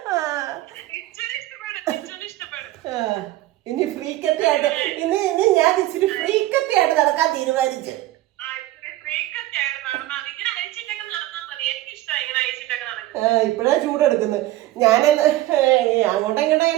ഇനി ഫ്രീക്കത്തായിട്ട് ഇനി ഞാൻ ഇച്ചിരി ഫ്രീക്കത്തായിട്ട് നടക്കാൻ തീരുമാനിച്ചു. ഇപ്പഴാ ചൂടെടുക്കുന്നത്. ഞാൻ അങ്ങോട്ടും ഇങ്ങോട്ടും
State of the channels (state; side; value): quieter; left; 16.1 dB